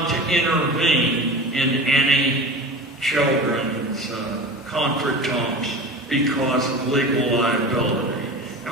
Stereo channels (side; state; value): both; normal; correlation 0.33